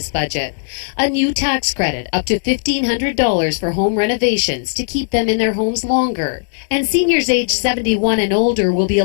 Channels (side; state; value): right; silent; digital silence